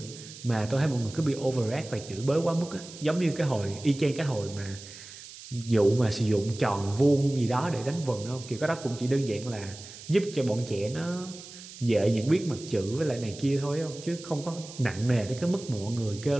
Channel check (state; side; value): noise; right; hiss, 15 dB below the sound